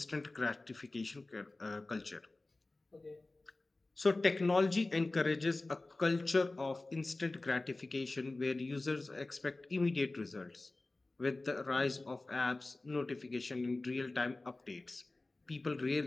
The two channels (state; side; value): quieter; right; 3.0 dB